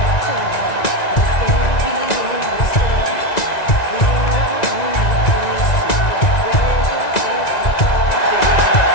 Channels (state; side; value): late; right; 1.9 ms